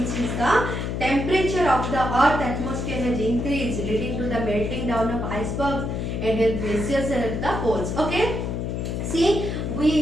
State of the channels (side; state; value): left; noise; hum, 2 dB below the sound